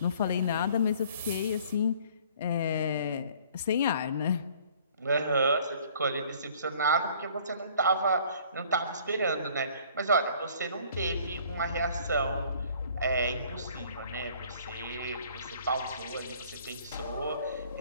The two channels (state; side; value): inverted; both; correlation -0.55